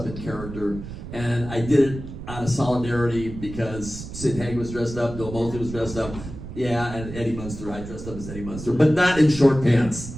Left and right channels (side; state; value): right; noise; rumble, 11 dB below the sound